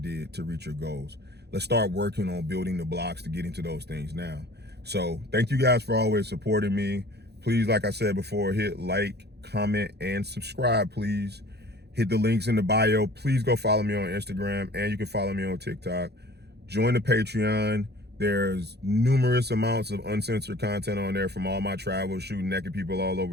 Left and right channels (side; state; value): left; late; 0.48 ms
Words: to reach your goals. Let's start working on building the blocks to get into those things now. So thank you guys for always supporting me. Please, like I said before, hit like, comment, and subscribe, please. Hit the links in the bio. Please go follow me on Instagram, and you can follow me on TikTok. Join the Patreon. There's numerous amounts of uncensored content on there from all my travels, shooting naked people all